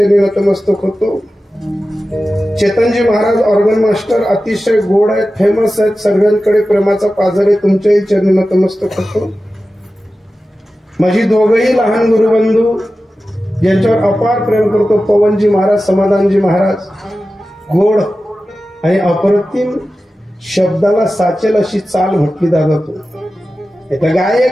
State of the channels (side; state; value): both; normal; correlation 0.94